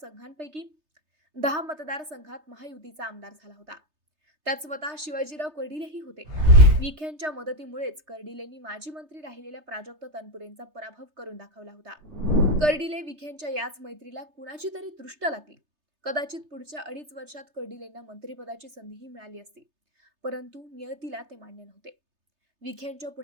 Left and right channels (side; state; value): left; late; 3.3 ms